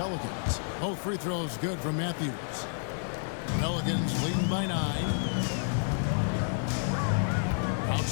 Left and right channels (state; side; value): silent; right; 58 dB below the other